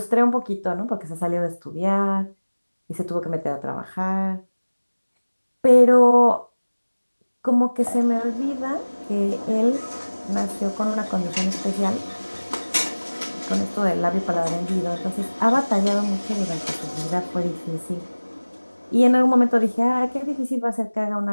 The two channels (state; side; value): inverted; both; correlation -1.00